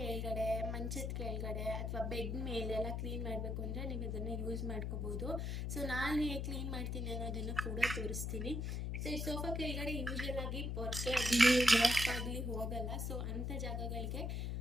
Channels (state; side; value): noise; left; hum, 1 dB below the sound